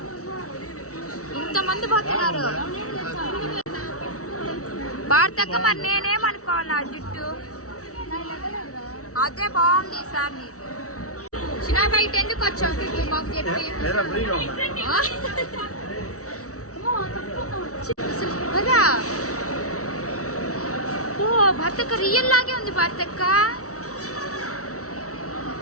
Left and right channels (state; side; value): late; right; 0.65 ms